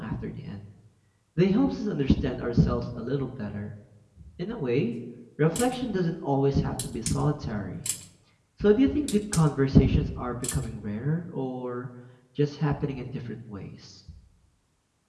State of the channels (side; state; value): both; identical; correlation 1.00